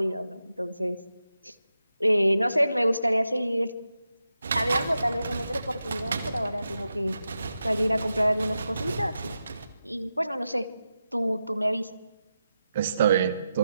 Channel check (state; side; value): inverted; both; correlation -0.89